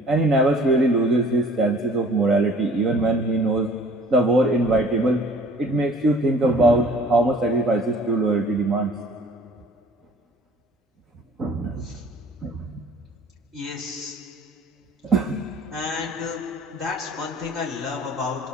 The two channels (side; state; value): both; normal; correlation 0.51